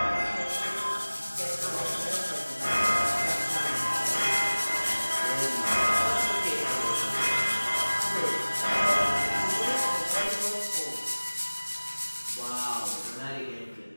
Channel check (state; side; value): inverted; both; correlation -1.00